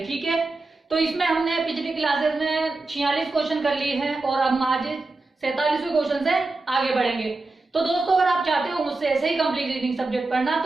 ठीक है, तो इसमें हमने पिछली क्लासेस में 46 क्वेश्चन कर लिए हैं और हम आज 47वें क्वेश्चन से आगे बढ़ेंगे। तो दोस्तों अगर आप चाहते हो मुझसे ऐसे ही कंप्लीट रीडिंग सब्जेक्ट पढ़ना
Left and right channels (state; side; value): quieter; left; 3.3 dB